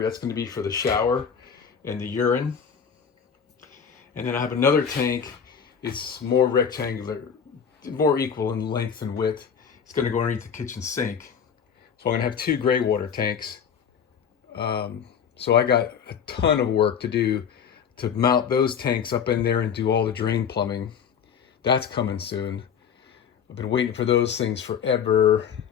That's going to be for the shower and the urine. And then I have another tank it's more rectangular, more equal in length and width. It's going to go underneath the kitchen sink. So I'm going to have 2 gray water tanks. So I got a ton of work to do to mount those tanks up in there and do all the drain plumbing. That's coming soon. I've been waiting for those things forever.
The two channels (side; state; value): right; quieter; 7.3 dB